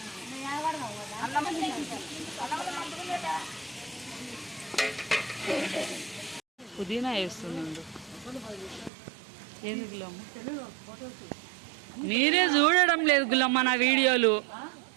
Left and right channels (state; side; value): drops out; left; at 8.9 s